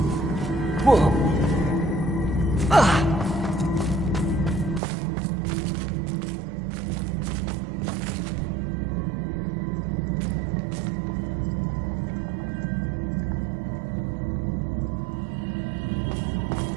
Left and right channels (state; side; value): drops out; left; at 4.8 s